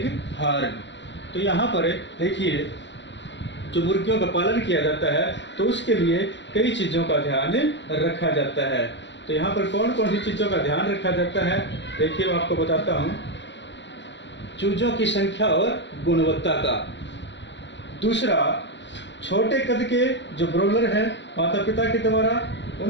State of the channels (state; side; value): late; right; 0.52 ms